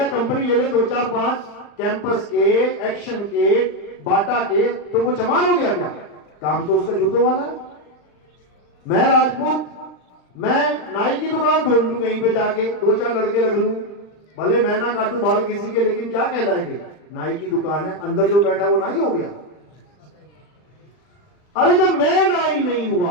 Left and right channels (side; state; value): right; late; 39 ms